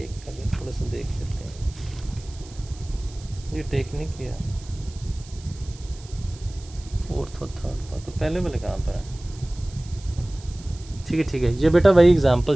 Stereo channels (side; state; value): right; noise; hiss, 21 dB below the sound